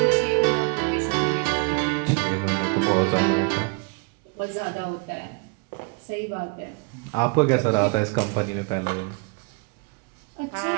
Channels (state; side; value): quieter; left; 33.9 dB